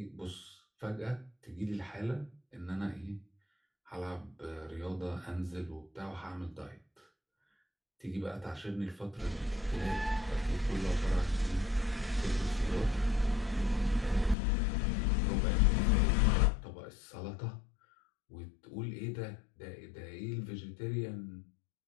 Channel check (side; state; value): right; drops out; at 14.4 s